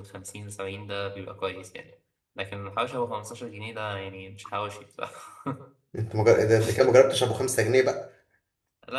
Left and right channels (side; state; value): both; identical; correlation 1.00